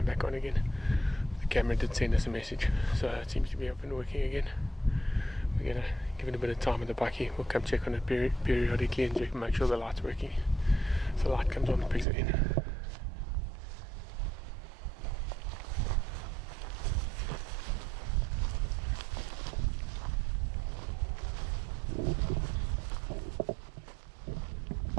back on again. The camera did send us a message, so it seems to be up and working again. We're gonna give it a bit of time with the bucky. We'll come check on it periodically and check, make sure the light's working. So the light comes on, the pigs are in.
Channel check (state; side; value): drops out; left; at 12.1 s